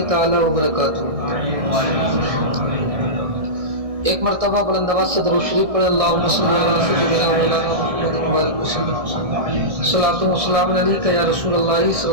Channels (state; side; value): late; left; 1.6 ms